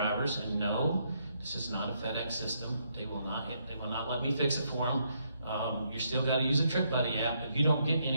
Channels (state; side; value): inverted; both; correlation -0.75